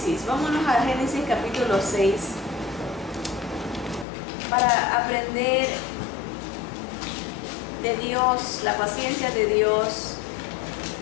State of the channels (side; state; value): right; drops out; at 4.0 s